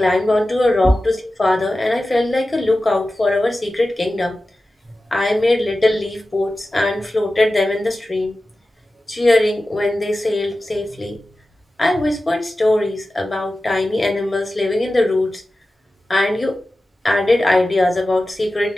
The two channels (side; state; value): both; normal; correlation 0.94